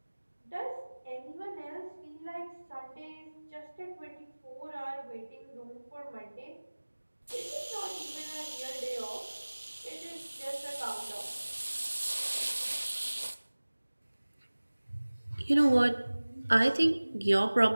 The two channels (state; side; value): inverted; both; correlation -1.00